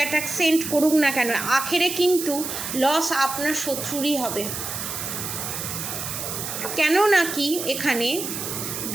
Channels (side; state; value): right; noise; hiss, 5 dB below the sound